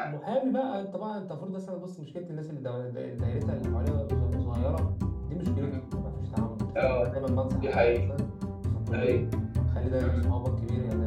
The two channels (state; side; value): identical; both; correlation 1.00